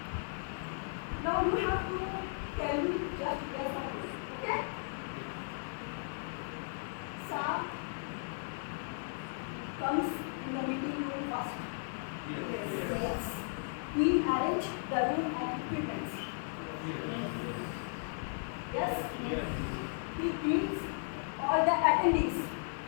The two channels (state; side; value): silent; right; 54 dB below the other